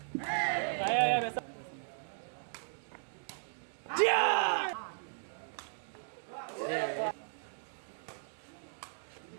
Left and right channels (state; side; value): silent; left; digital silence